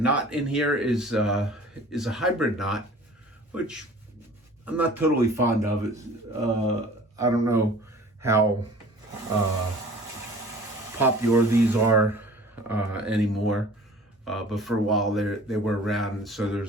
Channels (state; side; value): normal; both; correlation 0.46